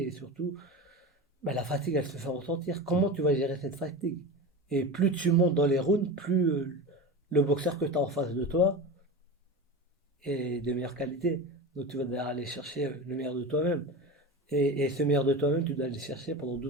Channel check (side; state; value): both; normal; correlation 0.27